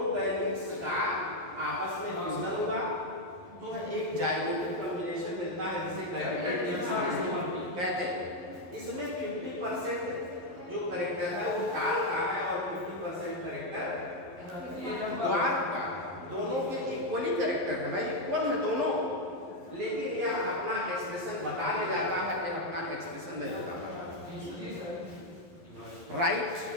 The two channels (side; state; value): left; late; 11 ms